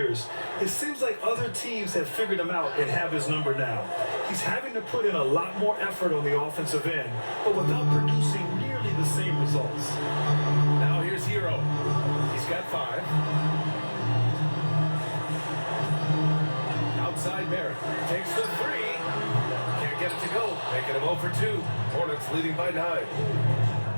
it seems like other teams have figured him out and have his number now. He's having to put in a lot more effort on the offensive end, but without producing nearly the same results. Now here's Hero. He's got 5. Outside Barrett takes the 3. Can't get it to go. Making him 0 for 2. Hornets leading by 9.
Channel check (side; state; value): both; inverted; correlation -1.00